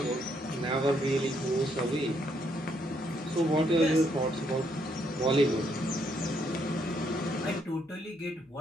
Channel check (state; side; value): normal; both; correlation 0.73